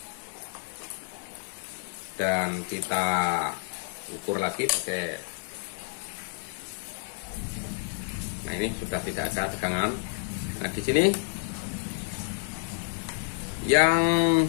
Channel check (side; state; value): right; silent; digital silence